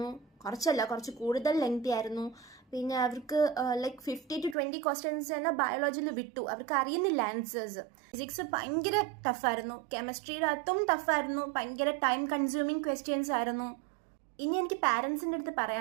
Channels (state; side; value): drops out; left; at 4.5 s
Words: കുറച്ച് കൂടുതൽ ലെങ്തി ആയിരുന്നു. പിന്നെ അവർക്ക് 50 to 20 ക്വസ്റ്റ്യൻസ് തന്നെ ബയോളജിയിൽ വിട്ടു, അവർക്ക് അറിയുന്നില്ല ആൻസേഴ്സ്. ഫിസിക്സ് ഭയങ്കര ടഫായിരുന്നു, കെമിസ്ട്രിയുടെ അകത്തും ടഫായിരുന്നു, ഭയങ്കര ടൈം കൺസ്യൂമിങ് ക്വസ്റ്റ്യൻസ് ആയിരുന്നു. ഇനി എനിക്ക് പാരൻസിൻ്റെ അടുത്ത്